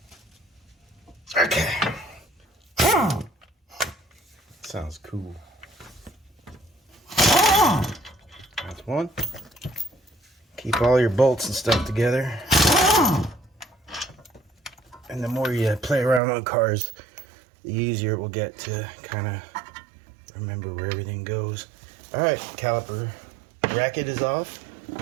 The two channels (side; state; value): left; drops out; at 16.2 s